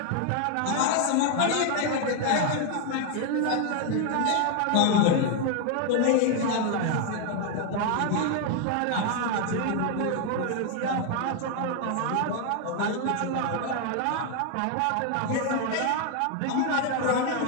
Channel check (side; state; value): both; different; correlation 0.01